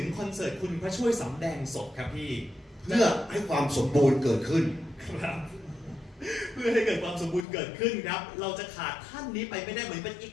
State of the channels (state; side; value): drops out; right; at 7.5 s